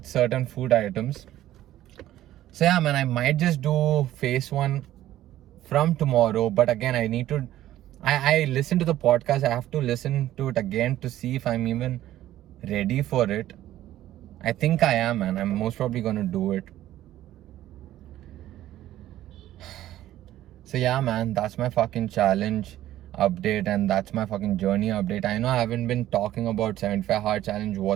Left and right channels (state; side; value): quieter; left; 13.7 dB